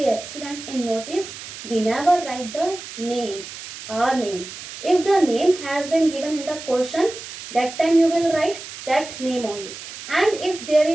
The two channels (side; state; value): right; noise; hiss, 12 dB below the sound